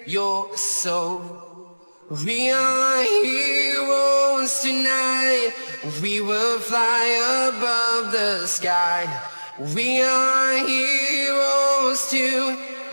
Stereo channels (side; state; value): both; inverted; correlation -1.00